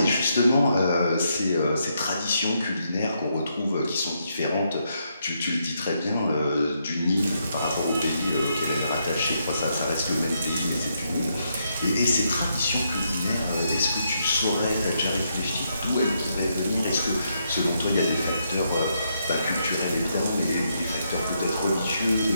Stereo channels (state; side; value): inverted; both; correlation -0.78